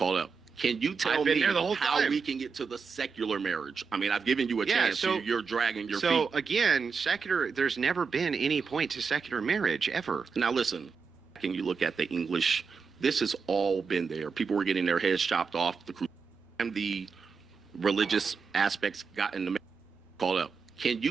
up. Can you tell me how we can get to the secular marriage? I mean, I've given you a chance. So you're dragging your feet. So again, secular. There's never been any point to secular marriage ever. Now listen. Can you look at the English? This has all been there. People were getting their heads chopped off. The religious aspects got in the called up. Can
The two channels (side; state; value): left; quieter; 5.4 dB